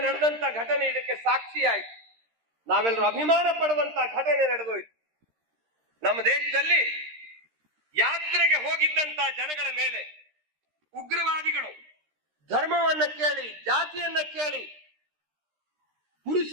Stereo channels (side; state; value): left; late; 13 ms